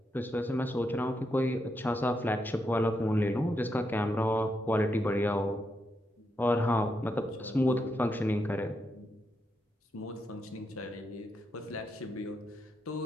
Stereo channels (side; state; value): both; normal; correlation 0.82